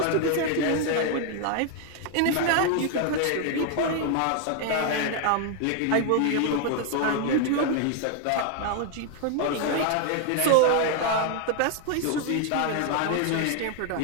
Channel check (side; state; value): both; different; correlation 0.01